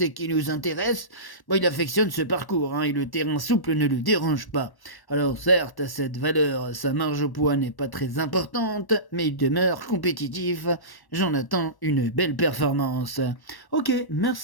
qui nous intéresse. Il affectionne ce parcours, et le terrain souple ne le dérange pas. Alors, certes, à cette valeur, sa marge au poids n'est pas très importante, mais il demeure compétitif. J'en attends une belle performance. Ok,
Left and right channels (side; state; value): right; late; 1.1 ms